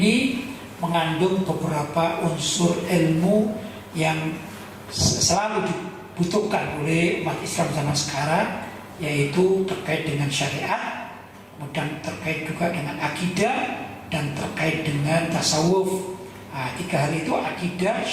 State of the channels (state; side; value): identical; both; correlation 1.00